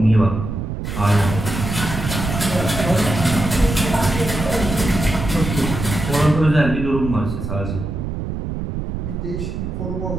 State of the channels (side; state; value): right; noise; rumble, 5 dB below the sound